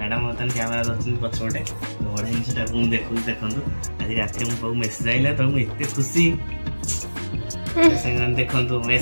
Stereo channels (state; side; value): inverted; both; correlation -1.00